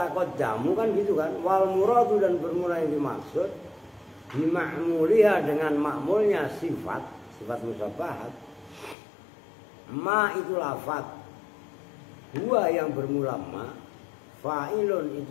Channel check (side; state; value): right; drops out; at 9.0 s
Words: jamu kan gitu kan. Wal muradu dan bermula yang dimaksud bima'muliha dengan makmulnya sifat musabbahat. Ma itu lafaz, huwa yang bermula ma, fa'ilun